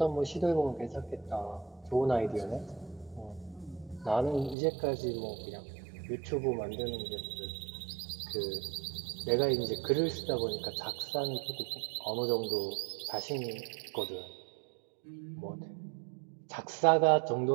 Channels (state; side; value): drops out; left; at 4.5 s